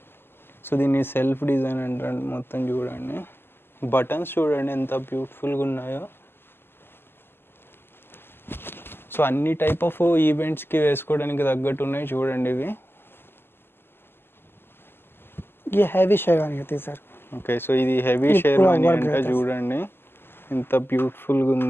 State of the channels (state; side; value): late; right; 0.11 ms